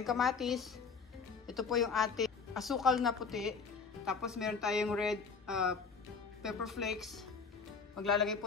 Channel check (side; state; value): right; quieter; 5.2 dB